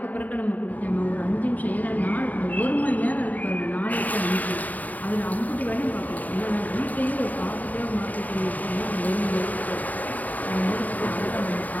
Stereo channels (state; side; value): late; right; 0.077 ms